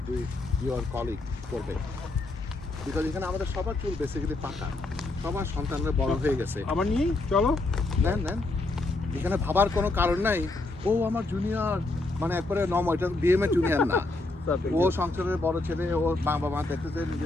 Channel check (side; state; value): right; quieter; 3.0 dB